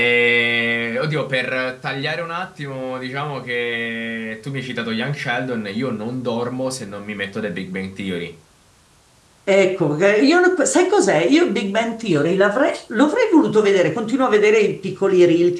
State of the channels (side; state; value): both; identical; correlation 1.00